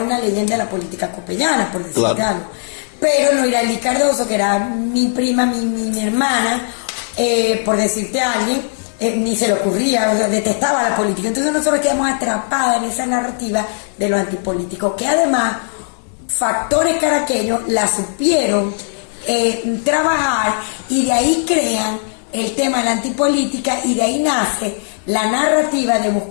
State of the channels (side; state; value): right; silent; digital silence